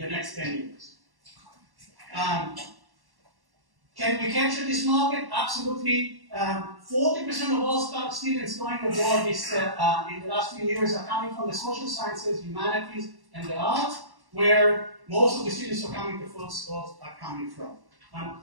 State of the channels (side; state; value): left; late; 1.1 ms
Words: next 10 years. Can we capture this market? Absolutely. 40% of all students going abroad in the last few years are coming from the social sciences, humanities, and the arts, where most of the students who are coming to full schools are coming from.